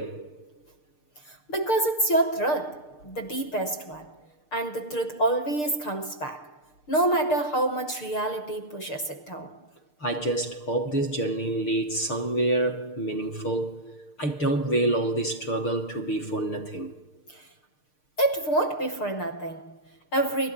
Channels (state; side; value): late; right; 6.6 ms